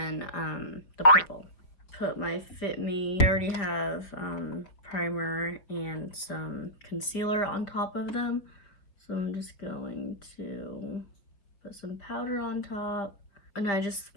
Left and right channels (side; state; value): right; late; 4.9 ms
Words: the purple. Put my Fit Me. I already have primer and some concealer on top of them, so I'm just going to put some powder on top, and I just